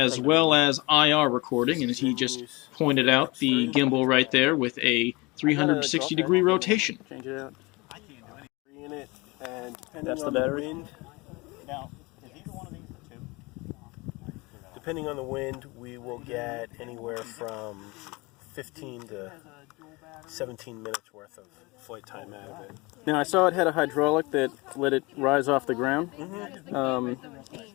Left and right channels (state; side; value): quieter; right; 24.8 dB